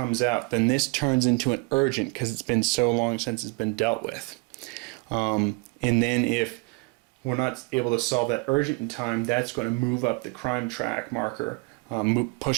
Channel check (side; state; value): left; quieter; 28.2 dB